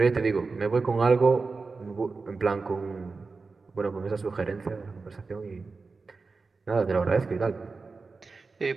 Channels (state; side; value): quieter; left; 4.2 dB